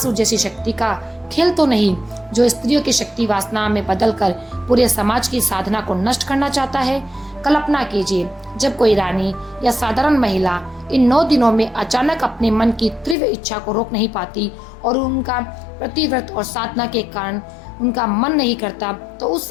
जैसी शक्ति का खेल तो नहीं जो स्त्रियों की शक्ति वासना में बदलकर पूरे समाज की साधना को नष्ट करना चाहता है? कल्पना कीजिए, जब कोई रानी या साधारण महिला इन 9 दिनों में अचानक अपने मन की तीव्र इच्छा को रोक नहीं पाती और उनका प्रतिव्रत और साधना के कारण उनका मन नहीं करता, तो उस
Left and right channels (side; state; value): right; drops out; at 13.2 s